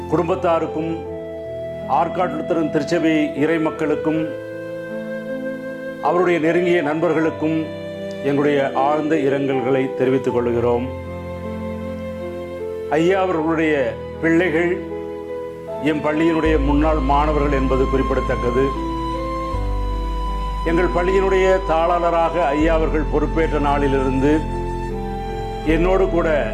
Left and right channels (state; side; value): identical; both; correlation 1.00